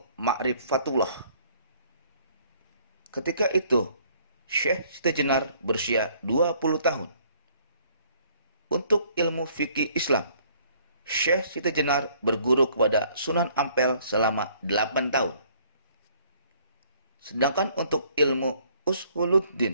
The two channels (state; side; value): inverted; both; correlation -0.61